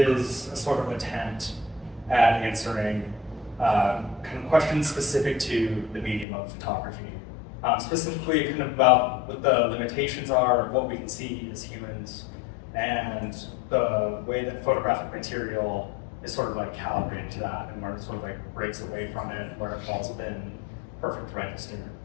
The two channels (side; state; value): right; drops out; at 6.2 s